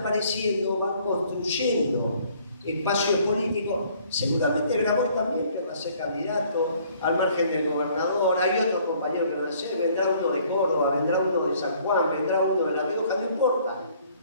van construyendo espacios políticos. Seguramente Grabois también querrá ser candidato al margen del gobernador. Hay otros compañeros que van a ser. Vendrá uno de Córdoba, vendrá uno de San Juan, vendrá uno de La Rioja, no importa.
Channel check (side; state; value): both; inverted; correlation -0.60